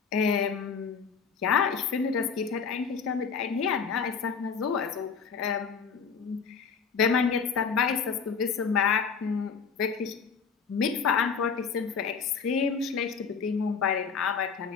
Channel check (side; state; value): right; quieter; 6.0 dB